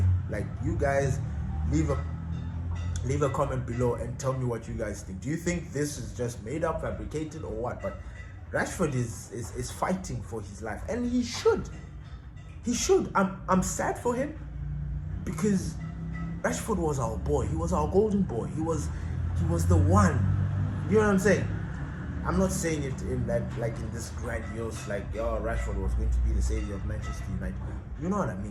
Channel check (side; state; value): both; identical; correlation 1.00